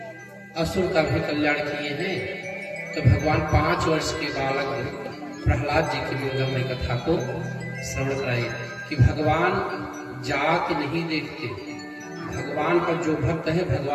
असुर का भी कल्याण किए हैं? तो भगवान 5 वर्ष के बालक प्रहलाद जी की मंगलमय कथा को श्रवण कराए कि भगवान जात नहीं देखते, भगवान का जो भक्त है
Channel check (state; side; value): identical; both; correlation 1.00